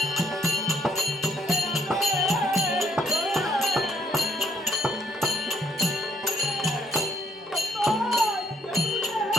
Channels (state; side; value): normal; both; correlation 0.69